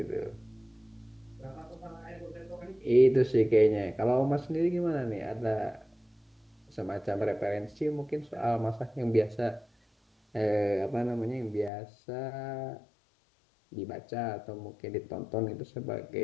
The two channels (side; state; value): right; drops out; at 11.7 s